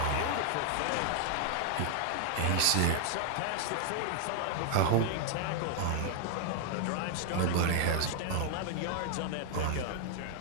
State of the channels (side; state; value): both; different; correlation 0.00